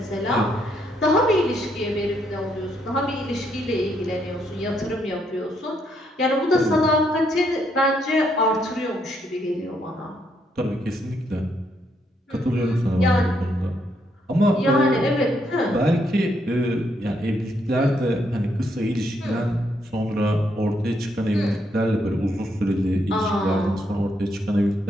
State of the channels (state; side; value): normal; both; correlation 0.75